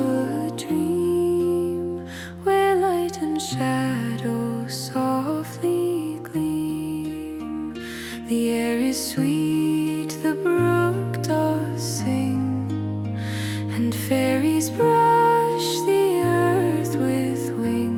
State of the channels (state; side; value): identical; both; correlation 1.00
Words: a dream, where light and shadow softly gleam. The air is sweet, the brook does sing, and fairies brush the earth with